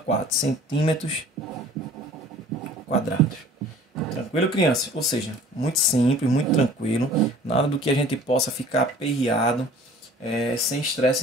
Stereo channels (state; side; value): normal; both; correlation 0.49